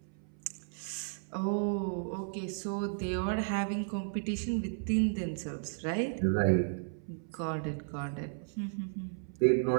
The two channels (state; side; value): silent; left; 55 dB below the other